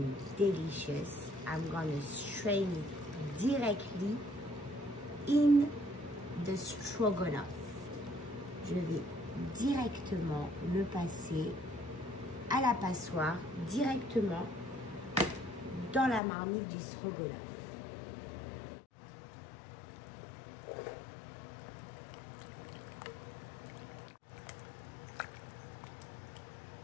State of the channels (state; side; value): drops out; right; at 16.2 s